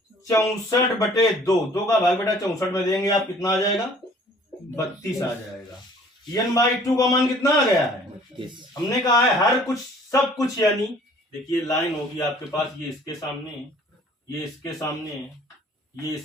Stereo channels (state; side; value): normal; both; correlation 0.54